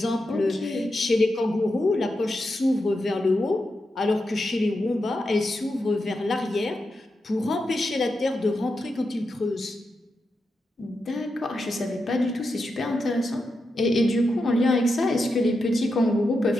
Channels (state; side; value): normal; both; correlation 0.87